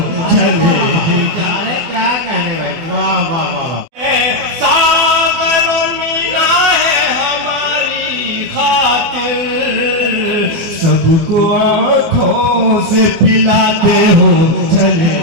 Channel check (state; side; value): late; left; 24 ms